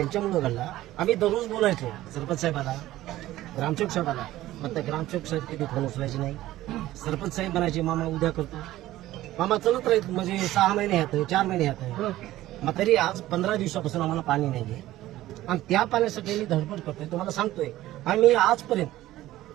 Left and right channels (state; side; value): quieter; left; 15.4 dB